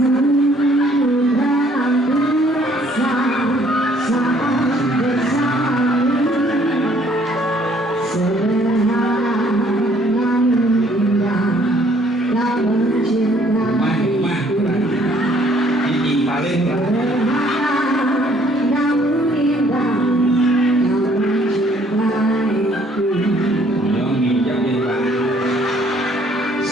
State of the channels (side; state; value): both; normal; correlation 0.62